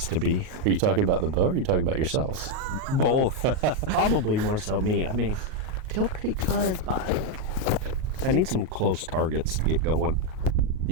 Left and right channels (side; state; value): left; late; 38 ms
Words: to be. Are you talking about the bow or are you talking about yourselves? Both. Probably more so me. I mean, feel pretty good, but I need some close targets to get going.